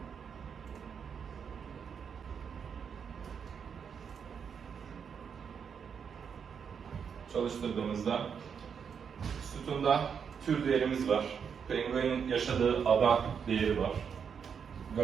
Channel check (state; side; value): quieter; left; 6.9 dB